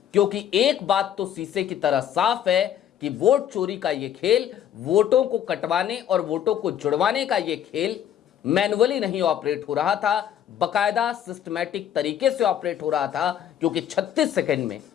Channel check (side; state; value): right; quieter; 10.0 dB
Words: क्योंकि एक बात तो शीशे की तरह साफ है कि वोट चोरी का ये खेल, वोटों को कटवाने और वोटों को जुड़वाने का ये खेल मैनुअली नहीं ऑपरेट हो रहा था, बकायदा सिस्टमैटिक तरीके से ऑपरेट हो रहा था, क्योंकि 36 सेकंड में